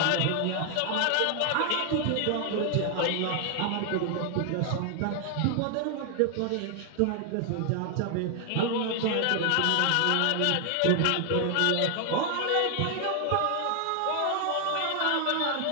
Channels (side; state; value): both; different; correlation 0.00